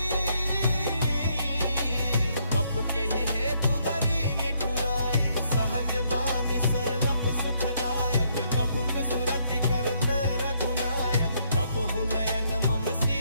कप के ही हेतु धरी निठुराई, सहज बानी सरब सुखदायक, प्रभु के सुरति करत रघुनायक, प्रभु नयन मम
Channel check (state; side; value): inverted; both; correlation -0.72